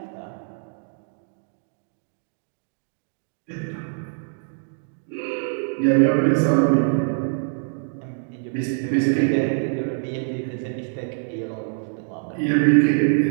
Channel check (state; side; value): silent; left; digital silence